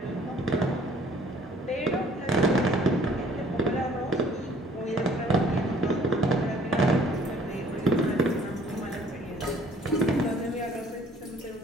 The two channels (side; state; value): both; normal; correlation 0.56